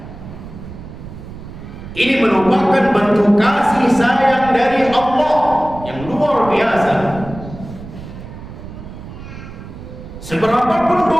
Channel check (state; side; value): noise; right; rumble, 13 dB below the sound